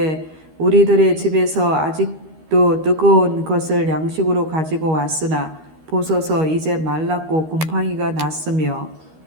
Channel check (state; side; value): late; left; 13 ms